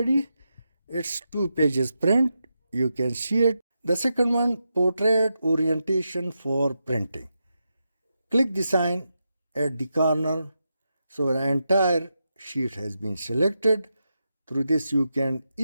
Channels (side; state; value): both; inverted; correlation -0.87